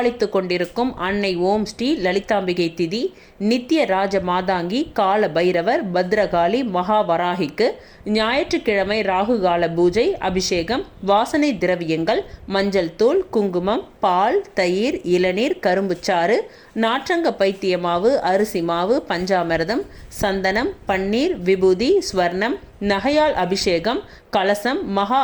கொண்டிருக்கும் அன்னை ஓம் ஸ்ரீ லலிதாம்பிகை திதி, நித்திய ராஜ மாதாங்கி, கால பைரவர், பத்ரகாளி, மகாவராகிக்கு ஞாயிற்றுக்கிழமை ராகுகால பூஜை, அபிஷேகம், வாசனை திரவியங்கள், மஞ்சள் தூள், குங்குமம், பால், தயிர், இளநீர், கரும்புச்சாறு, நாற்றங்க பைத்திய மாவு, அரிசி மாவு, பஞ்சாமிர்தம், சந்தனம், பன்னீர், விபூதி, ஸ்வர்ணம், நகையால் அபிஷேகம், கலசம், மகா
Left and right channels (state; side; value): identical; both; correlation 1.00